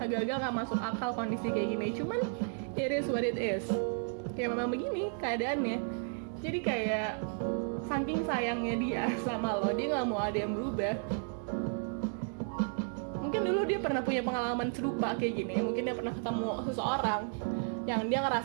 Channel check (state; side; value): silent; left; 56 dB below the other